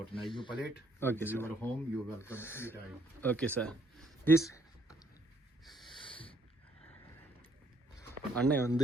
Are you palate? Okay, sir. You are home. You are welcome anytime. Okay, sir. This அண்ணன்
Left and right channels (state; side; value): normal; both; correlation 0.68